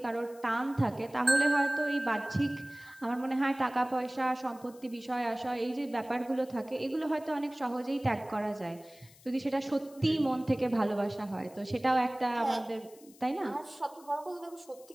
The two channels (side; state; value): left; noise; hiss, 24 dB below the sound